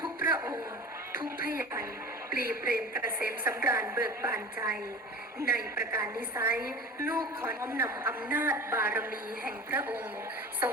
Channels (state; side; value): normal; both; correlation 0.35